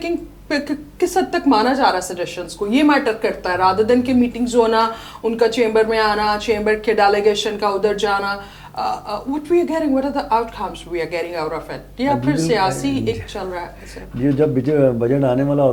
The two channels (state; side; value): identical; both; correlation 1.00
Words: کس حد تک مانا جا رہا ہے سجیشنز کو, یہ میٹر کرتا ہے رادر دین کہ میٹنگز ہونا, ان کا چیمبر میں آنا, چیمبر کے ڈیلیگیشن کا ادھر جانا. What we are getting, what are the outcomes we are getting out of it? یا پھر سیاسی ایک چل رہا ہے. یہ جب بجٹ آنے والا